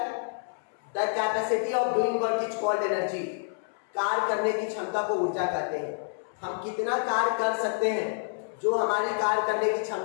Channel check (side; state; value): right; silent; 59 dB below the other